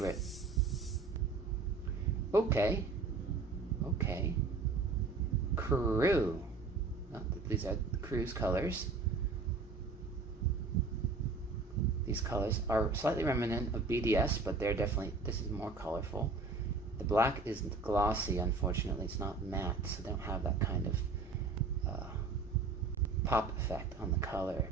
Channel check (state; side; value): quieter; left; 4.0 dB